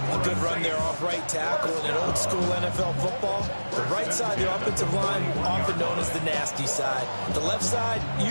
A good run there off right tackle in an old-school NFL football. The right side, the offensive line, often known as the nasty side. The left side,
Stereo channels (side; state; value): both; inverted; correlation -1.00